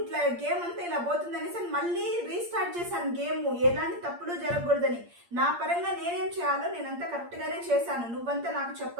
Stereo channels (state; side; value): late; left; 8.6 ms